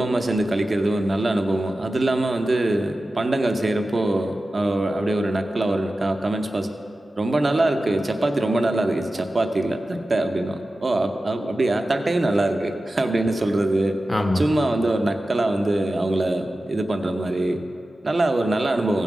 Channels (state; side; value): normal; both; correlation 0.94